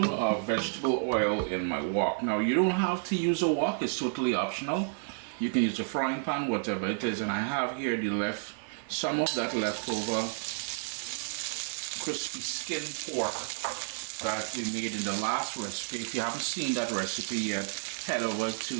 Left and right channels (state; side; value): silent; left; digital silence